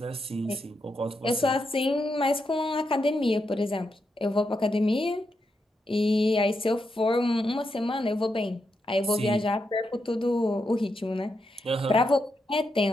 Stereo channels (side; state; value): both; normal; correlation 0.84